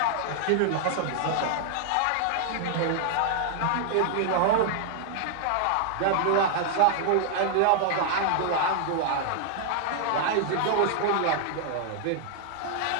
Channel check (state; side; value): different; both; correlation 0.00